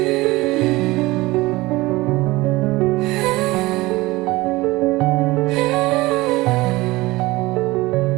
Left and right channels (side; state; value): left; quieter; 20.5 dB